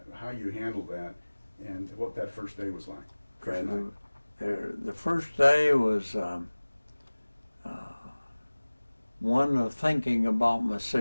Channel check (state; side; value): inverted; both; correlation -1.00